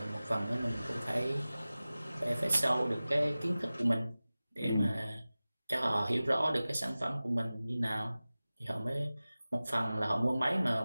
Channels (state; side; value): inverted; both; correlation -0.97